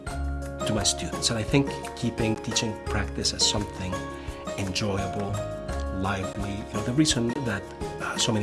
to my students. And I think keeping teaching practice as something enjoyable, lively, the reason that so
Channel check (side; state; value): both; identical; correlation 1.00